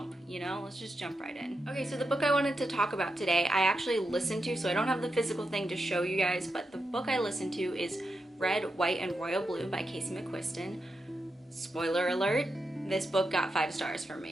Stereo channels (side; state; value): both; normal; correlation 0.87